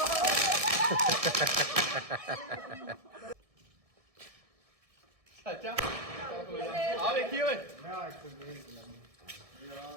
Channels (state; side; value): late; left; 1.6 ms